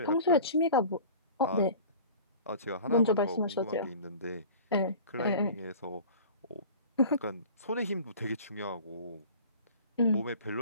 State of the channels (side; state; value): both; inverted; correlation -0.42